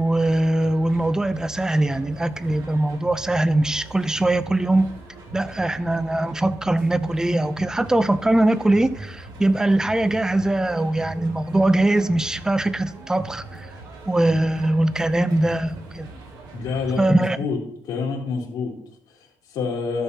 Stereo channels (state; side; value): normal; both; correlation 0.94